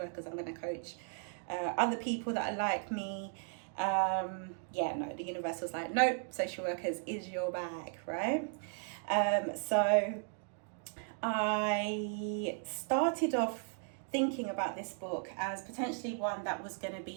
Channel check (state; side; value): silent; left; 54 dB below the other